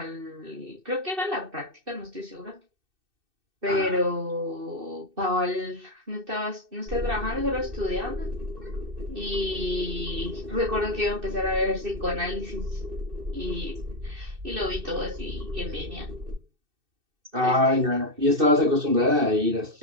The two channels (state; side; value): late; left; 2.6 ms